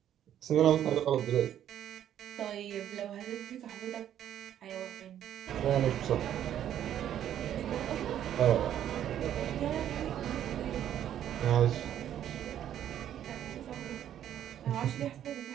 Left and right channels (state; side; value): quieter; left; 10.7 dB